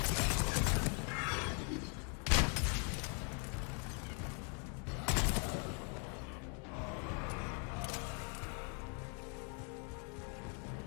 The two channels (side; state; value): right; quieter; 39.5 dB